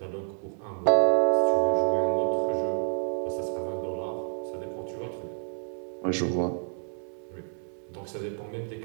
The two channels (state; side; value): silent; left; digital silence